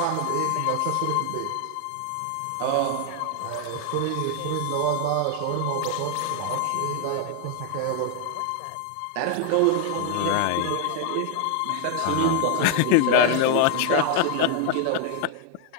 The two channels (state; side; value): different; both; correlation 0.00